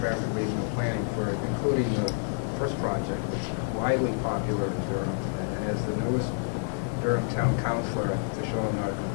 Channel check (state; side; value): silent; right; 55 dB below the other